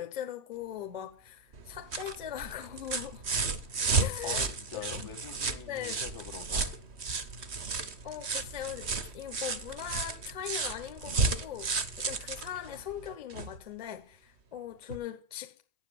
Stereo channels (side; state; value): left; late; 3.1 ms